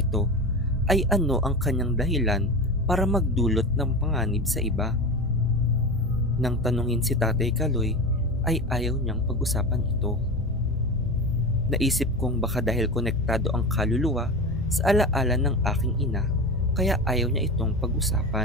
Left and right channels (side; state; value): both; normal; correlation 0.26